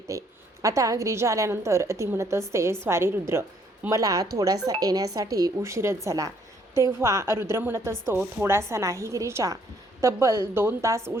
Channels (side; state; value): both; normal; correlation 0.66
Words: आता गिरिजा आल्यानंतर ती म्हणत असते, स्वारी रुद्र, मला थोडासा येण्यासाठी उशीरच झाला. तेव्हा रुद्र म्हणत असतो, थोडासा नाही गिरिजा, तब्बल 2 तास